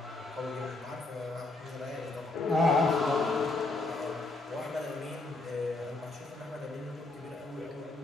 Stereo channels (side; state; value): right; quieter; 3.0 dB